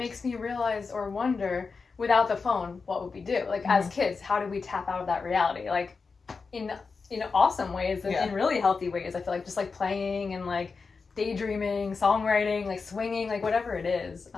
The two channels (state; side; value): quieter; right; 4.7 dB